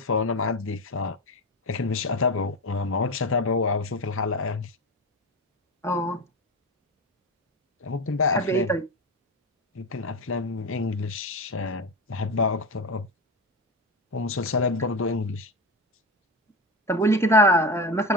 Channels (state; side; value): normal; both; correlation 0.20